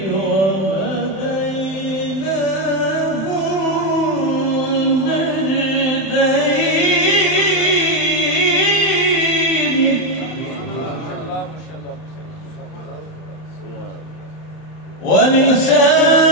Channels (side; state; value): right; late; 31 ms